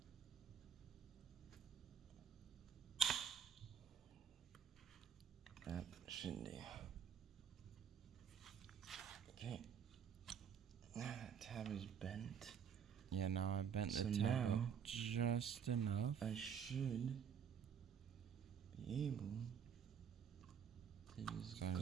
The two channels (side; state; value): left; quieter; 7.7 dB